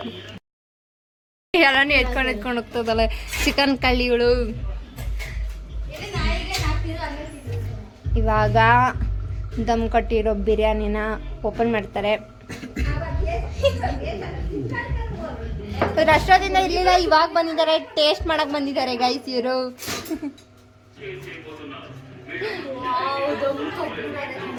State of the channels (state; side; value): identical; both; correlation 1.00